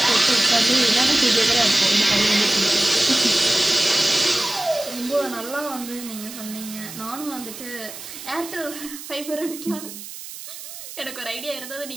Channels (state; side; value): noise; right; hiss, 12 dB below the sound